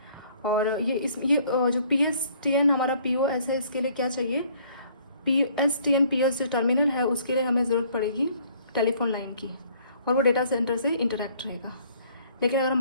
और ये जो पीएसटीएन हमारा पीओएस है, इसके लिए क्या चाहिए, पीएसटीएन पीओएस जो टर्मिनल है उसके लिए हमें ज़रूरत पड़ेगी टेलीफोन लाइन की, और वो डेटा सेंटर से इंटरेक्ट रहेगा। लेकिन अगर हम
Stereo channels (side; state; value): both; inverted; correlation -0.59